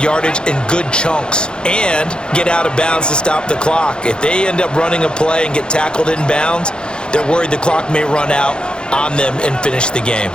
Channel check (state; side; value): late; right; 0.049 ms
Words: in good chunks and get out of bounds to stop the clock. If they end up running a play and get tackled in bounds, they're worried the clock may run out on them and finish the game.